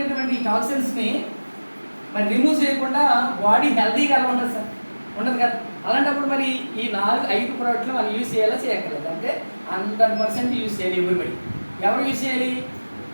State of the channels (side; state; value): both; inverted; correlation -1.00